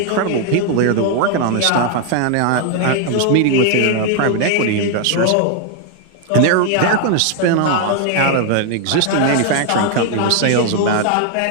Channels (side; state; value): both; different; correlation 0.00